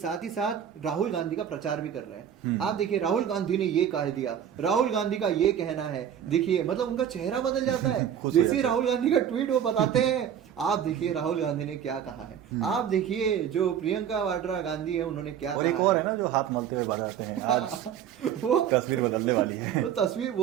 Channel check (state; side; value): quieter; left; 9.2 dB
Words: ही साथ राहुल गांधी का प्रचार भी कर रहे हैं। आप देखिए राहुल गांधी ने ये कह दिया, राहुल गांधी का ये कहना है, देखिए मतलब उनका चेहरा बदल जाता है। जैसे राहुल गांधी का ट्वीट वो बताते हैं, आप देखिए राहुल गांधी ने क्या कहा है, आप देखिए जो प्रियंका वाड्रा गांधी है उन्होंने क्या कहा। एक और है ना जो हाथ मलते हुए बताते हैं, आज वो तस्वीर बदलने वाली है। वो तस्वीर,